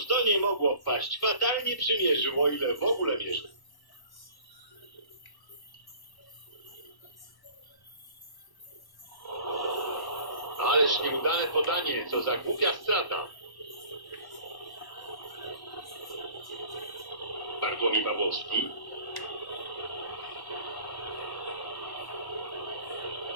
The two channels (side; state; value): right; late; 1.1 ms